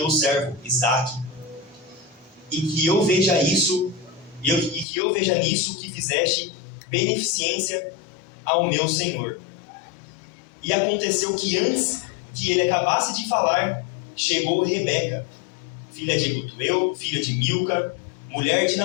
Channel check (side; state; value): right; drops out; at 4.9 s